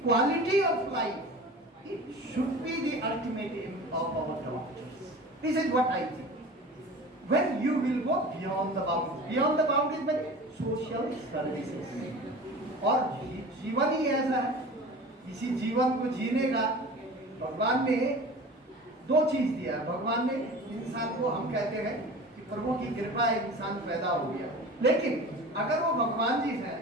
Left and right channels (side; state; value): both; normal; correlation 0.37